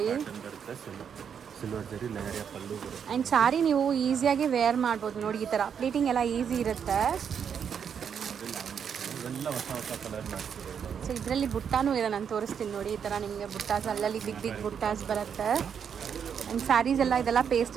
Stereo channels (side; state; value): left; quieter; 7.5 dB